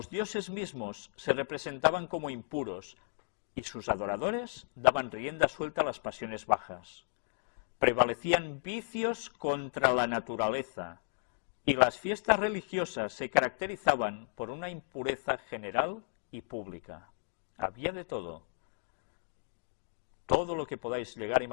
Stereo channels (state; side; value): silent; right; digital silence